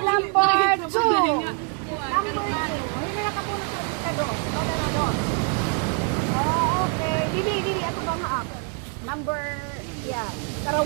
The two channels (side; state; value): left; quieter; 37.0 dB